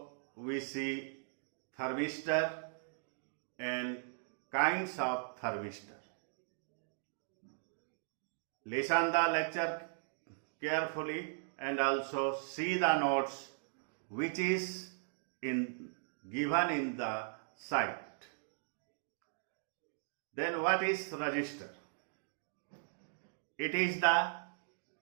we see thermistor and kinds of thermistor. Listen the lecture carefully and also see the notes which is given in the site. Then what is resistor? It is the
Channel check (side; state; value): left; silent; digital silence